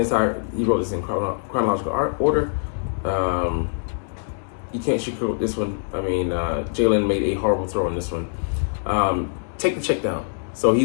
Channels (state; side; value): silent; right; digital silence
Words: he wrote this in chronological order, you can't sugarcoat this one. I mean, Jalen made a horrible throw on this one. Take the check down. So